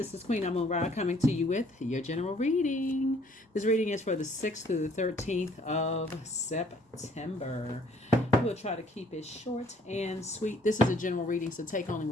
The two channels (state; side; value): normal; both; correlation 0.61